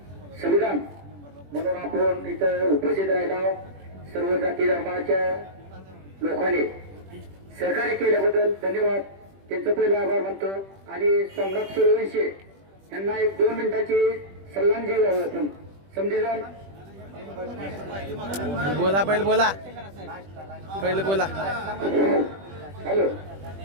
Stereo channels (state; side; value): late; left; 21 ms